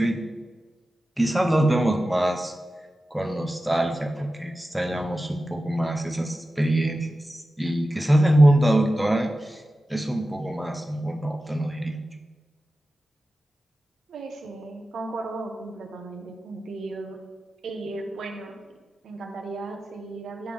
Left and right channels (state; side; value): normal; both; correlation 0.94